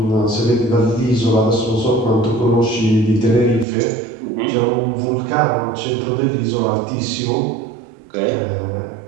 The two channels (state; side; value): drops out; left; at 3.7 s